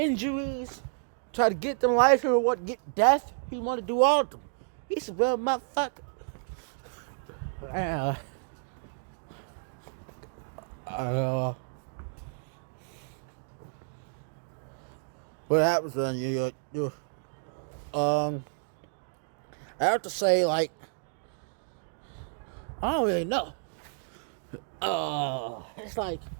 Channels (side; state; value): left; silent; digital silence